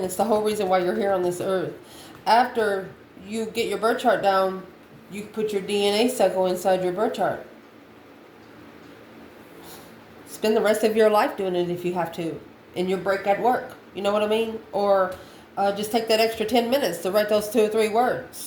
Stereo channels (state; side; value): identical; both; correlation 1.00